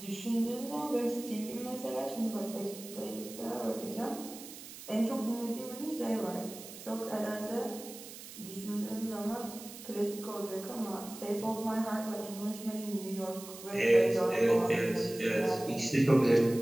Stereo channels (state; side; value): noise; right; hiss, 14 dB below the sound